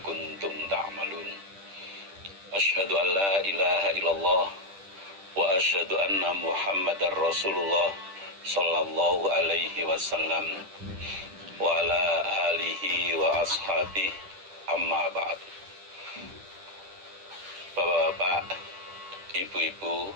kuntum ta'malun. Asyhadu an la ilaha illallah wa asyhadu anna Muhammadar Rasulullah sallallahu alaihi wasallam wa ala alihi wa ashabihi, amma ba'd. Bapak-bapak, ibu-ibu,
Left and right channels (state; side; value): late; left; 10 ms